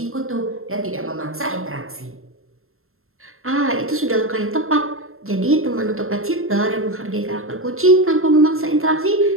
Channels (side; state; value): left; late; 0.62 ms